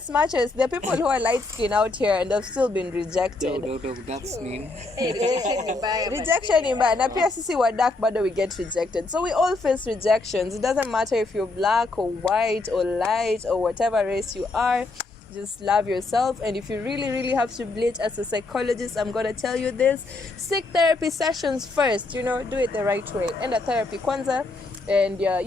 much as there are people who are light skinned out here and they've still been rejected. That's mean. Rejection ni mbaya, na pia sisi wa dark bado we get rejected, so we all face rejections. It doesn't matter if you're black or white or light or whatever race you are. Just love yourself, and if you really have to bleach, as a psychologist, I'm gonna tell you this: seek therapy sessions first. You know, do it the right way. End at therapy kwanza, and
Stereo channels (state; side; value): quieter; right; 3.3 dB